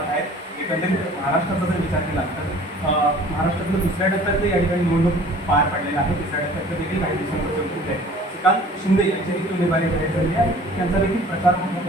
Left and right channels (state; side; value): normal; both; correlation 0.49